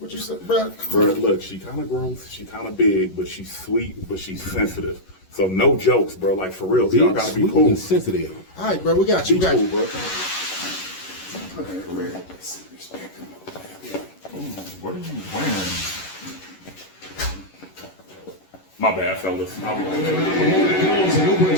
you said, bro? Bro, look, she kind of gross, she kind of big, but she's sweet, but she's sensitive. So no jokes, bro. Like for real, y'all gotta be cool. Sensitive. All right, bro, we got you. Be We got cool, you. bro. What are you wearing? My bad, fellas. I'll be back.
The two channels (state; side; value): late; right; 11 ms